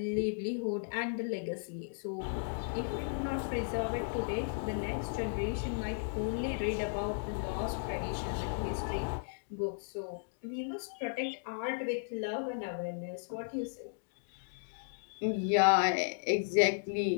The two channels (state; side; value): silent; right; digital silence